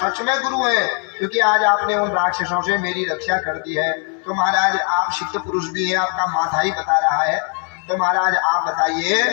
में गुरु हैं, क्योंकि आज आपने उन राक्षसों से मेरी रक्षा कर दी है। तो महाराज आप सिद्ध पुरुष भी हैं, आपका माथा ही बता रहा है। तो महाराज आप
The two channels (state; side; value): quieter; right; 39.5 dB